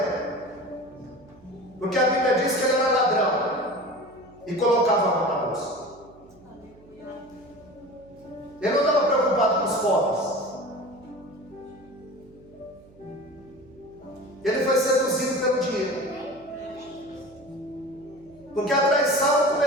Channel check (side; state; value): right; noise; hum, 25 dB below the sound